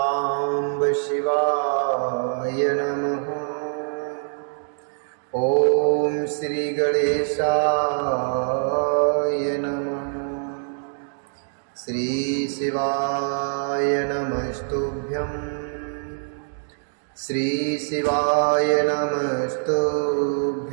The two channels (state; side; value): silent; left; digital silence